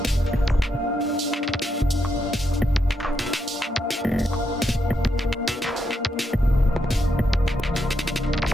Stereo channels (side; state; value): both; normal; correlation 0.81